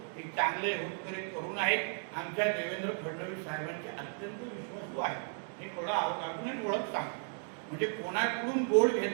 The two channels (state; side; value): silent; left; 55 dB below the other